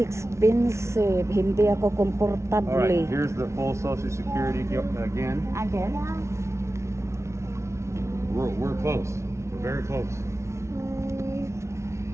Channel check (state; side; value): late; left; 0.13 ms